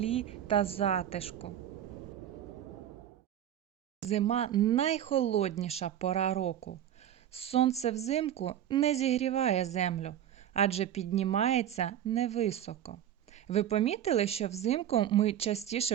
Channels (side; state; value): left; quieter; 10.7 dB